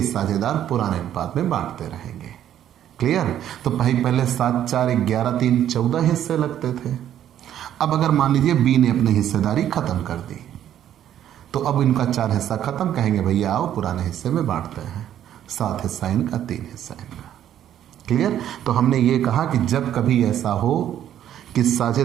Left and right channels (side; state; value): left; quieter; 10.9 dB